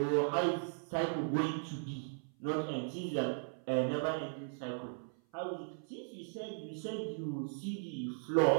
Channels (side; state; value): left; silent; 53 dB below the other